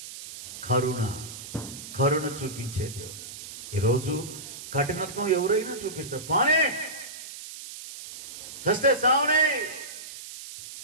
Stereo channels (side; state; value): right; noise; hiss, 12 dB below the sound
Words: కరుణ చూపించే దేవుడు. ఈరోజు కఠినత్వం ఎవరైనా చూపిస్తారు, పానే చస్తే సావనే